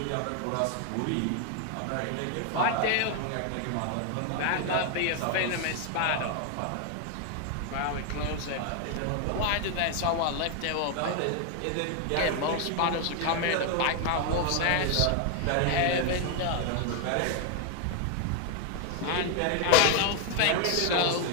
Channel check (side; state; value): both; different; correlation 0.00